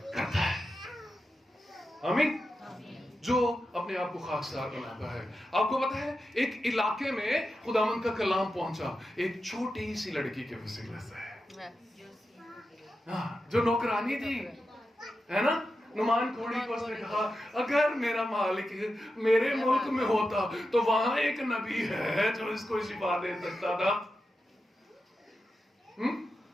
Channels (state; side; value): normal; both; correlation 0.90